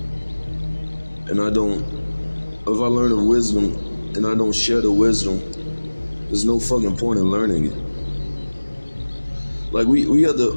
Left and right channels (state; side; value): inverted; both; correlation -1.00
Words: and if I learn of wisdom, and I don't share the wisdom, there's no fucking point in learning it. Like we have